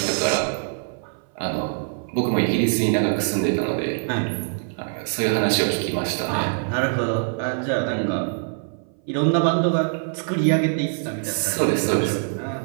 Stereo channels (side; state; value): left; silent; 59 dB below the other